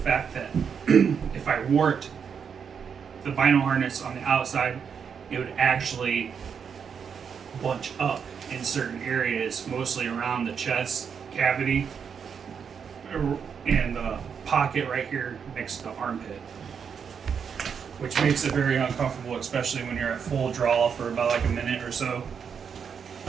that if I wore it, the bino harness on the outside, it would actually bunch up in certain areas, mostly around the chest cavity and the pocket right here next to the armpit, which makes it very uncomfortable, especially when you're at full draw for about like a minute or so.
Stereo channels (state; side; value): quieter; left; 6.8 dB